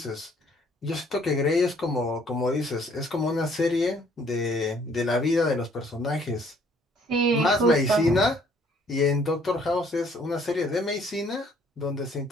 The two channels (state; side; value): normal; both; correlation 0.62